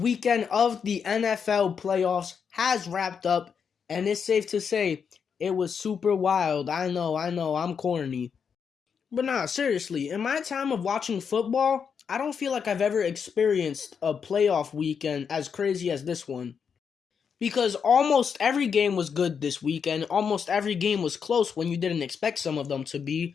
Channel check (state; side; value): quieter; right; 6.6 dB